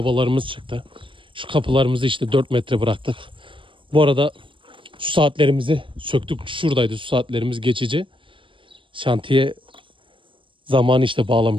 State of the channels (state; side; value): late; left; 0.25 ms